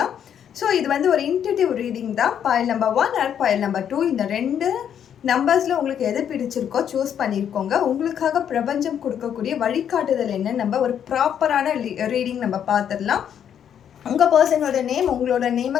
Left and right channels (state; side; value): quieter; right; 9.0 dB